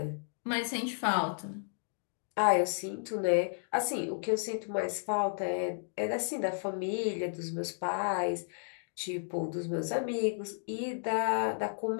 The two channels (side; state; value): right; silent; digital silence